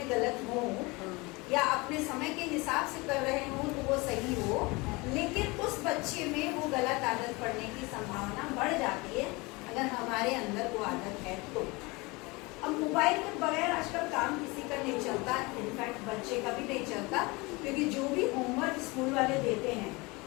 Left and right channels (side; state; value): right; quieter; 25.0 dB